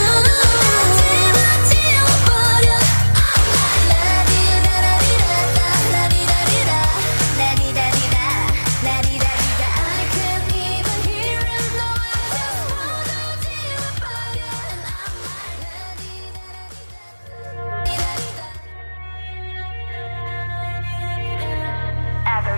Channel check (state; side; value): inverted; both; correlation -1.00